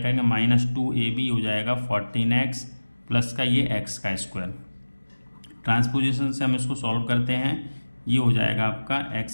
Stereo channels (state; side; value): inverted; both; correlation -1.00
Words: माइनस 2ab हो जाएगा 14x प्लस का ये x का स्क्वायर। ट्रांसपोजिशन से हम इसको सॉल्व करते हैं, ये हो जाएगा आपका